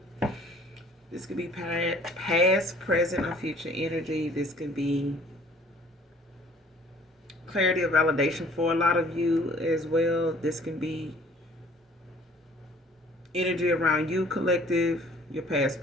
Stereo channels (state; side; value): normal; both; correlation 0.54